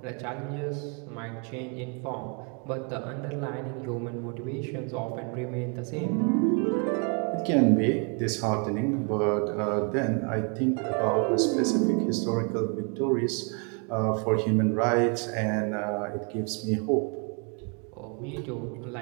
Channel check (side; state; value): left; quieter; 37.0 dB